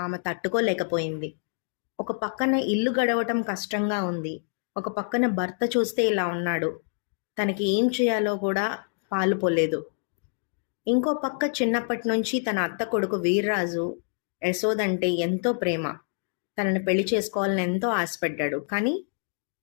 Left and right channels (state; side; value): silent; right; digital silence